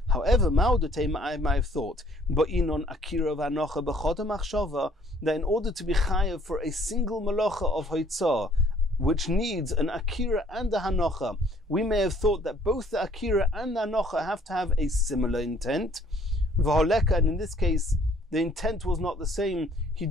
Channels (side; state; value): both; normal; correlation 0.60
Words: However, I might have thought, that in order to be chayav for a single malacha of hoitzah, which needs an akira and a hanocha, we may have thought that both the akira and the hanocha have to have a similar intent. And in this case, the intent was not the same. He